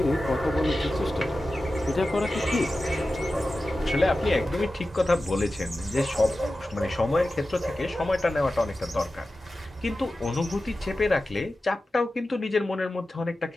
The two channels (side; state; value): both; normal; correlation 0.94